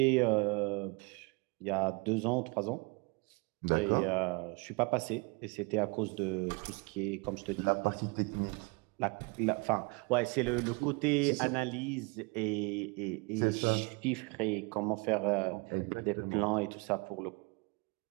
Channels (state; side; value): quieter; left; 29.9 dB